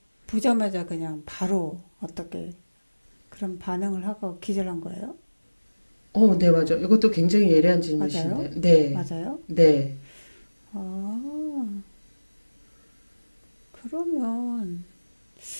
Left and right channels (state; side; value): inverted; both; correlation -1.00